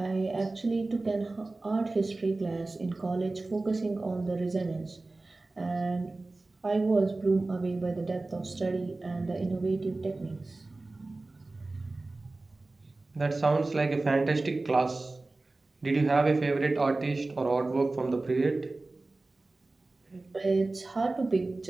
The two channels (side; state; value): left; quieter; 3.2 dB